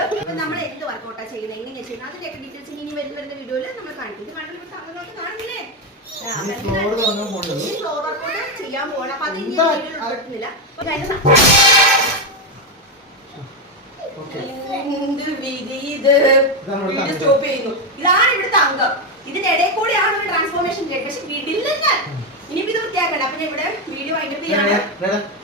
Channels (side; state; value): both; normal; correlation 0.08